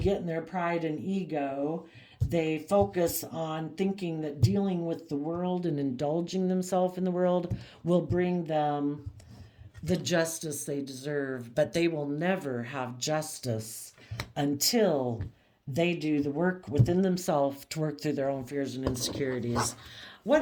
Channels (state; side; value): identical; both; correlation 1.00